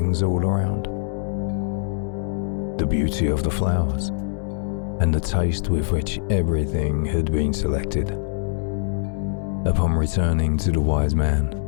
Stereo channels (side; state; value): right; silent; digital silence